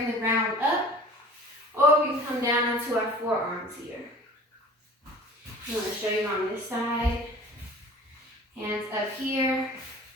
the ground up, or we can come down onto our forearms here. I'm going to show you on this side. Hands up here,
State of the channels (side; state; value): both; normal; correlation 0.43